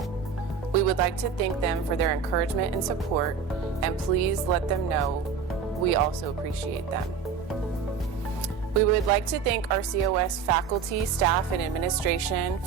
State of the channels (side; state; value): left; quieter; 6.2 dB